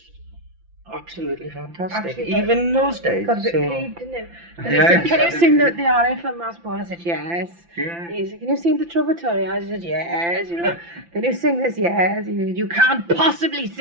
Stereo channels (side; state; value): left; late; 5.9 ms